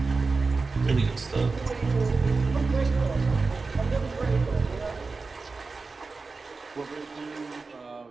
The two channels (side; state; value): left; quieter; 4.1 dB